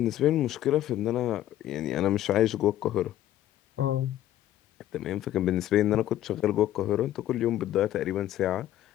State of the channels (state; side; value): quieter; right; 13.0 dB